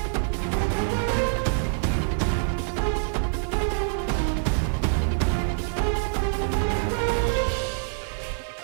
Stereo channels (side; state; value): left; silent; 61 dB below the other